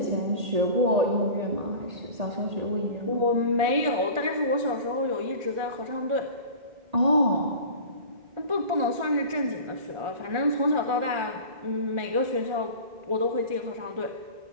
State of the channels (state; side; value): late; left; 1.4 ms